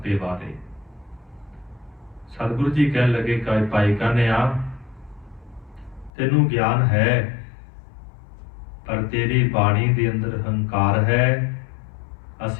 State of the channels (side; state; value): right; drops out; at 6.1 s